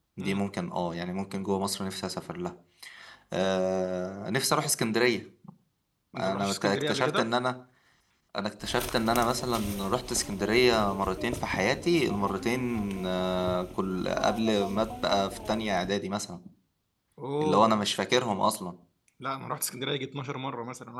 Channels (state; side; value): identical; both; correlation 1.00